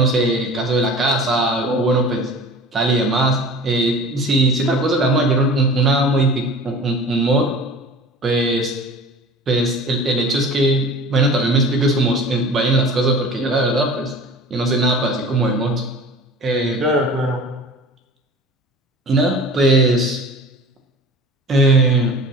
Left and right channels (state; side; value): normal; both; correlation 0.40